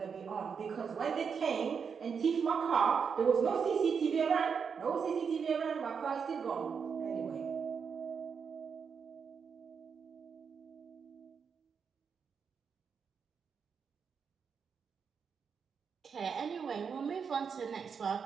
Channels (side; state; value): left; quieter; 6.3 dB